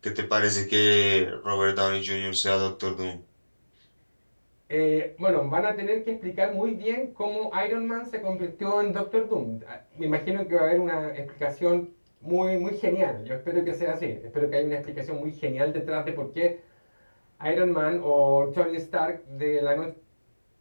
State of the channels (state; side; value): inverted; both; correlation -1.00